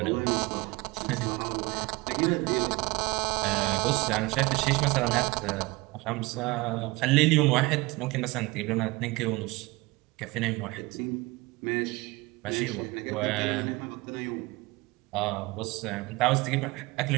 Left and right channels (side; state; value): left; quieter; 23.2 dB